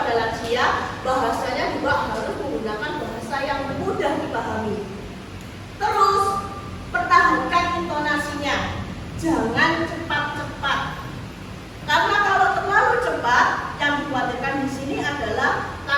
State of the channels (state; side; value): identical; both; correlation 1.00